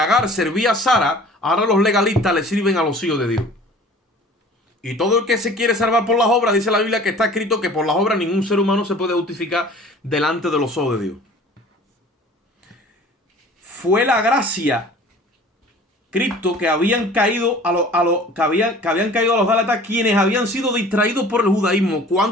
servía a Sara, ahora los legalistas le sirven a los hijos de Dios. Y todo el que se quiere salvar por las obras, dice la Biblia que está escrito que por las obras ningún ser humano se puede justificar delante de los ojos de Dios. Fue la gracia, Cristo, que habían caído que habían caído a los Gálatas, quienes habían sido distraídos por el judaísmo.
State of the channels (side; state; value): both; normal; correlation 0.46